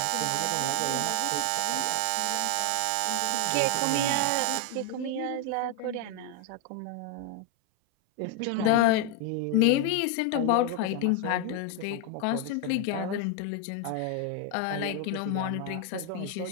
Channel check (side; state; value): both; different; correlation 0.01